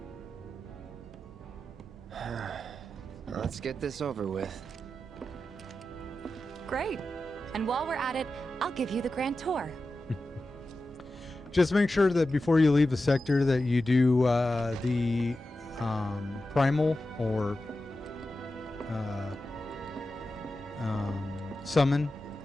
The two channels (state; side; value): normal; both; correlation 0.92